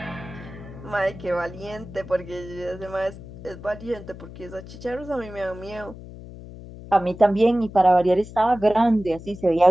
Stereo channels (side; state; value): left; noise; hum, 15 dB below the sound